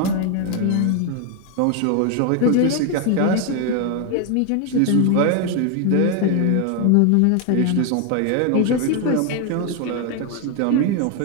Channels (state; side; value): different; both; correlation 0.01